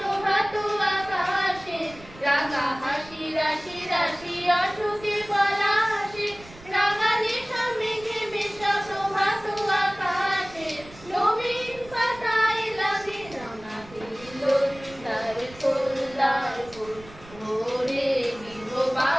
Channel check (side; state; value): right; noise; rumble, 20 dB below the sound